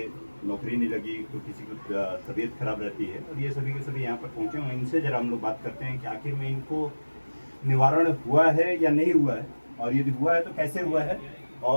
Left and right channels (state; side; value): inverted; both; correlation -1.00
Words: नौकरी नहीं लगी तो किसी की तबीयत खराब रहती है और ये सभी के सभी यहाँ पर पहुँचे हुए हैं। इनसे जरा हम लोग बात करते हैं कि आखिर में इनको निवारण हुआ है या नहीं हुआ है, और यदि हुआ है तो कैसे हुआ है,